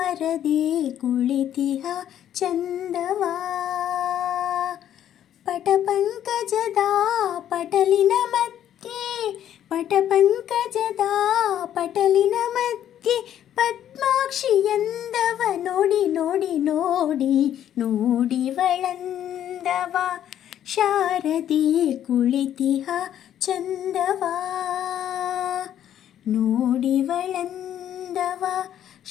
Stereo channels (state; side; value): quieter; right; 10.7 dB